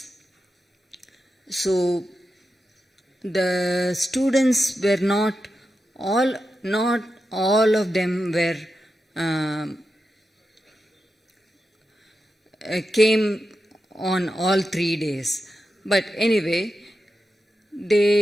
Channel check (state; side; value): normal; both; correlation 0.90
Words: So the students were not all of them were came on all 3 days. But anyway,